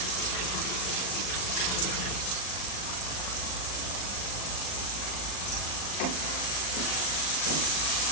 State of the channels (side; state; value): right; late; 39 ms